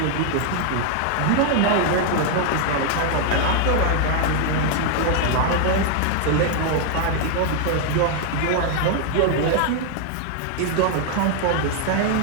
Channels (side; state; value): both; different; correlation 0.00